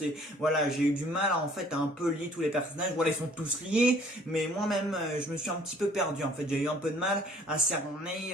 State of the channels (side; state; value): both; normal; correlation 0.57